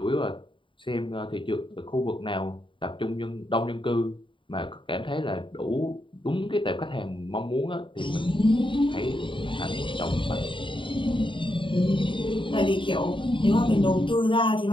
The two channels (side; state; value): right; late; 0.24 ms